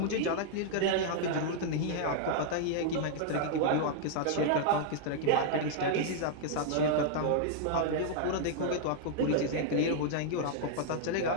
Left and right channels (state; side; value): different; both; correlation -0.01